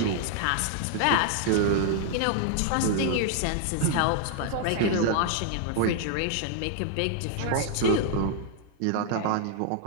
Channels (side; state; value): both; different; correlation 0.00